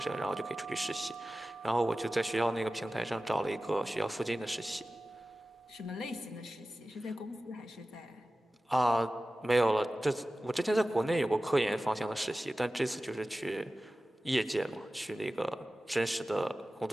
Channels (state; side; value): normal; both; correlation 0.95